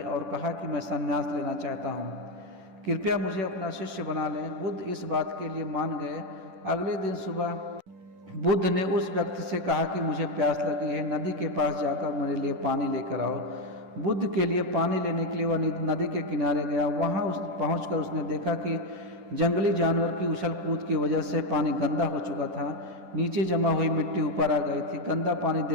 और कहा कि मैं संन्यास लेना चाहता हूँ, कृपया मुझे अपना शिष्य बना लें। बुद्ध इस बात के लिए मान गए। अगले दिन सुबह बुद्ध ने उस व्यक्ति से कहा कि मुझे प्यास लगी है, नदी के पास जाकर मेरे लिए पानी लेकर आओ। बुद्ध के लिए पानी लेने के लिए वह नदी के किनारे गया। वहां पहुंचकर उसने देखा कि जंगली जानवर की उछल कूद की वजह से पानी गंदा हो चुका था। नीचे जमा हुई मिट्टी ऊपर आ गई थी। गंदा पानी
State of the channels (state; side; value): late; left; 10 ms